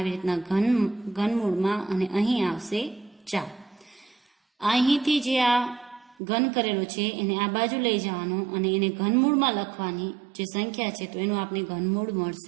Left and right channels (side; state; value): left; drops out; at 6.2 s